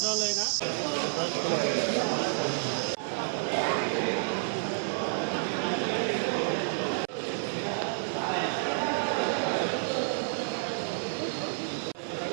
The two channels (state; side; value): silent; left; 58 dB below the other